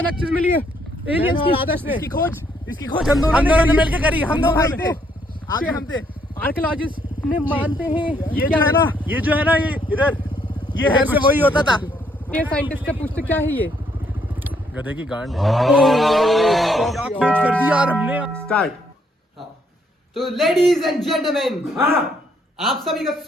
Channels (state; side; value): normal; both; correlation 0.71